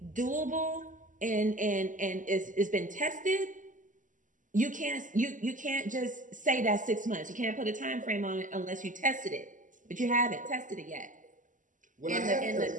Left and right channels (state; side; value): late; left; 0.37 ms